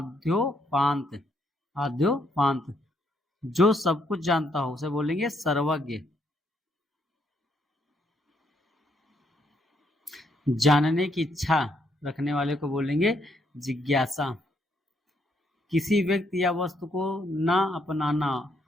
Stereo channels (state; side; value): normal; both; correlation 0.73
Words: आद्योपांत। जो सब कुछ जानता हो उसे बोलेंगे सर्वज्ञ। जानने की इच्छा रखने वाले को बोलेंगे जिज्ञासा। किसी व्यक्ति या वस्तु को ना अपनाना